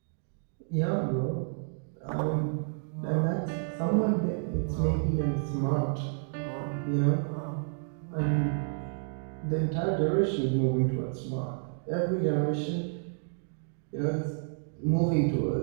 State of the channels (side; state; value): left; silent; digital silence